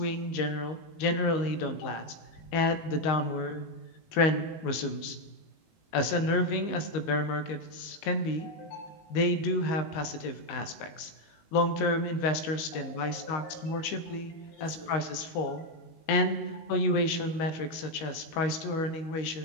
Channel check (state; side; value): late; right; 19 ms